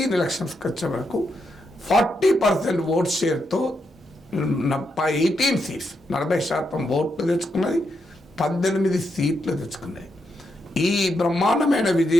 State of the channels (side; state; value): both; normal; correlation 0.82